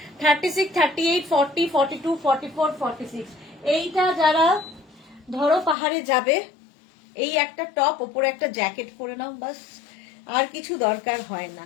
36, 38, 40, 42, 44, 46। এইটা যারা ধরো পাহাড়ে যাবে, এই একটা টপ ওপরে একটা জ্যাকেট পরে নাও, বাস আর কিছু দরকার হয় না।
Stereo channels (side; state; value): right; drops out; at 5.8 s